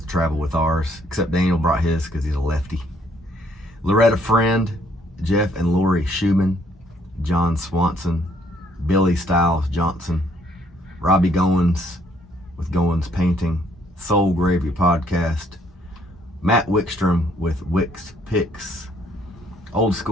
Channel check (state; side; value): normal; both; correlation 0.67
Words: to travel with ours, except Daniel brought his because he's a lefty. Loretta Friend, Jeff and Lori Schumann, John Swanson, Billy Stiles Johnson, Robbie Goins with Goins Painting, Soul Gravy Podcast, Matt Wickstrom with Wicks Picks, Old